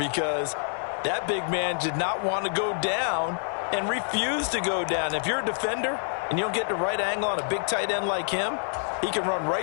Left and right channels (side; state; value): right; silent; 60 dB below the other